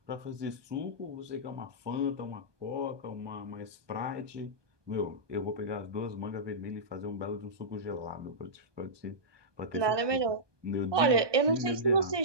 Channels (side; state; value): left; late; 1.2 ms